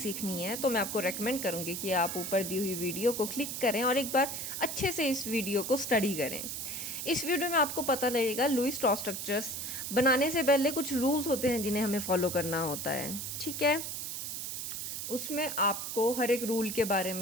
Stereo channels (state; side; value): noise; right; hiss, 5 dB below the sound